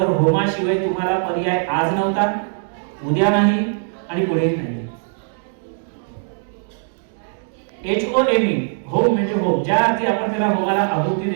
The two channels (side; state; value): left; silent; digital silence